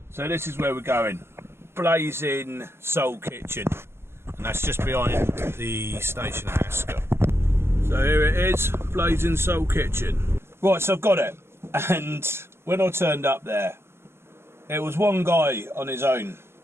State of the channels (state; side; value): late; left; 0.12 ms